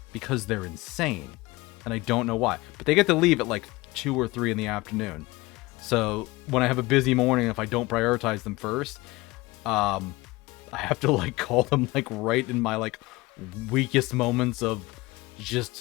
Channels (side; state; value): right; quieter; 21.7 dB